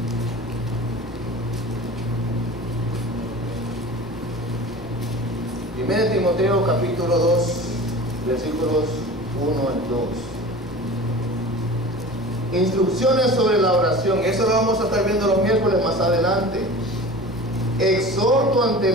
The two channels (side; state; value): left; noise; rumble, 21 dB below the sound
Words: Primero Timoteo capítulo 2, versículos 1 al 2. Instrucciones sobre la oración. Eso lo vamos a estar viendo los miércoles más adelante. Exhorto ante